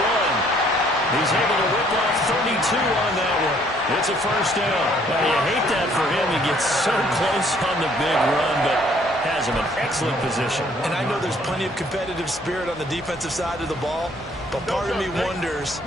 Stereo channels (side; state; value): both; normal; correlation 0.63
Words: He's able to rip off 32 on that one. It's a first down. Well, you hate that for him. He gets so close on the big run, but has him in excellent position. And I know there's plenty of competitive spirit on the defensive side of the ball, but part of me wonders